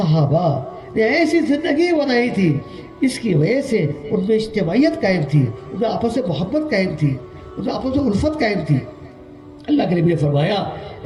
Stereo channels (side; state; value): both; identical; correlation 1.00